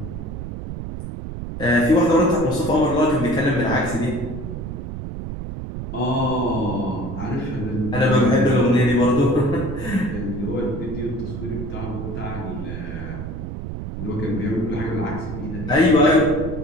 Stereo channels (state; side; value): noise; right; rumble, 7 dB below the sound